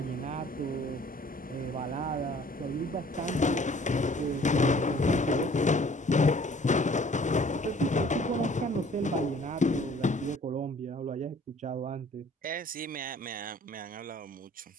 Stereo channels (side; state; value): both; normal; correlation 0.54